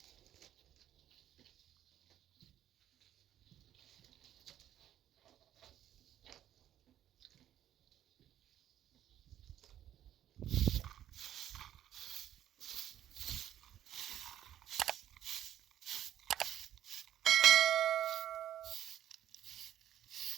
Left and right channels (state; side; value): quieter; left; 11.6 dB